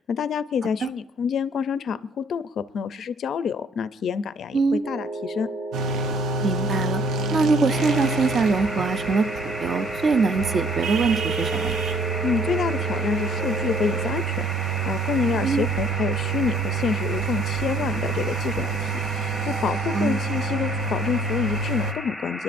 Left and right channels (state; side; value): normal; both; correlation 0.60